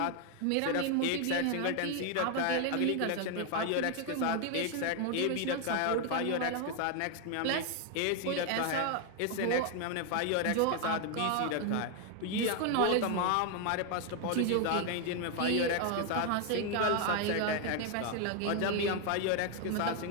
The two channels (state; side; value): different; both; correlation 0.01